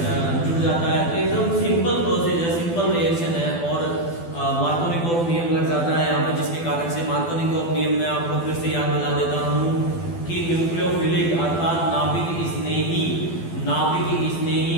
जुड़ जाता है। तो एकदम सिंपल प्रोसेस है, सिंपल रिएक्शन है और मार्कोनिकोव नियम लग जाता है यहाँ पे, जिसके कारण से मार्कोनिकोव नियम में आपको फिर से याद दिला देता हूँ कि न्यूक्लियोफिलिक अर्थात नाभिक स्नेही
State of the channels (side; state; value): right; late; 12 ms